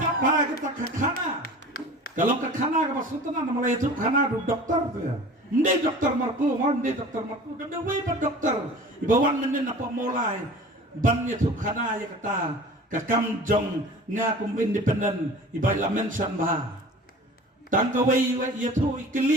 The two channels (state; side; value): normal; both; correlation 0.41